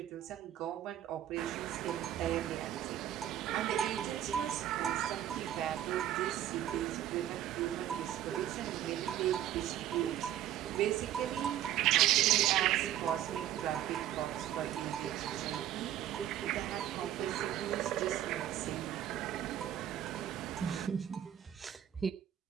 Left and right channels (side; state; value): left; quieter; 11.6 dB